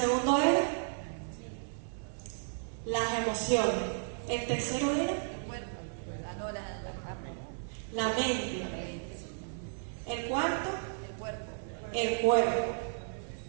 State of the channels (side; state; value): left; silent; 55 dB below the other